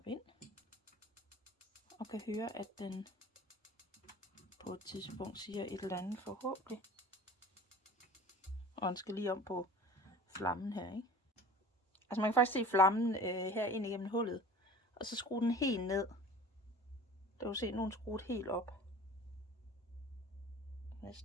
ind. Og kan høre, at den på et tidspunkt siger et eller andet forhåbentlig. Og den skal lige om på flammen her, ikke? Altså man kan faktisk se flammen her ind igennem hullet. Og så skrue den helt ned. Der kan du se, at nu er den skruet helt op.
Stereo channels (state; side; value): normal; both; correlation 0.42